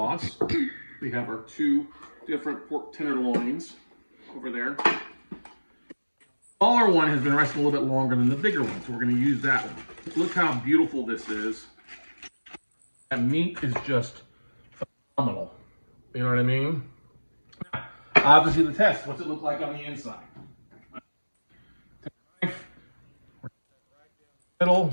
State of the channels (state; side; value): inverted; both; correlation -1.00